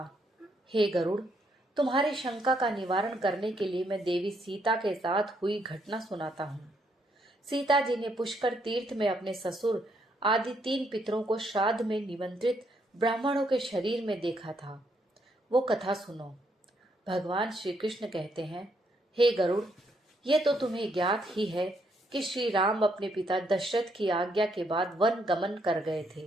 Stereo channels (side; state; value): both; normal; correlation 0.74